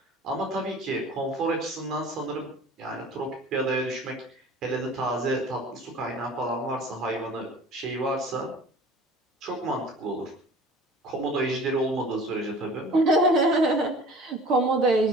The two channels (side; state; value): both; normal; correlation 0.44